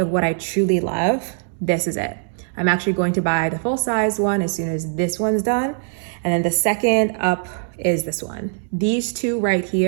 what I truly love, this is it. I'm actually going to buy the full size one as soon as this one's done. And then the second up is this one. These two right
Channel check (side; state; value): left; silent; digital silence